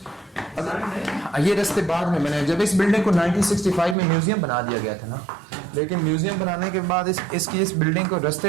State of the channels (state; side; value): drops out; left; at 4.0 s